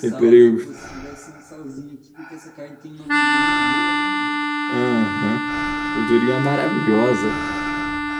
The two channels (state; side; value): identical; both; correlation 1.00